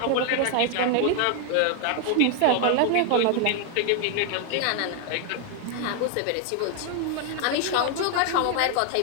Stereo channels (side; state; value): both; different; correlation 0.00